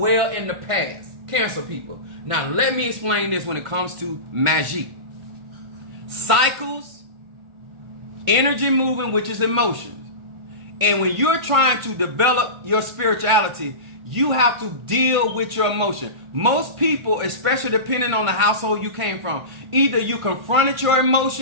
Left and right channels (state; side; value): late; left; 1.5 ms